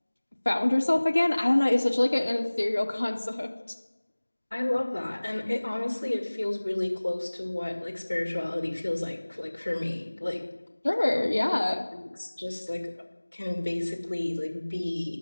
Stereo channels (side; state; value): both; inverted; correlation -1.00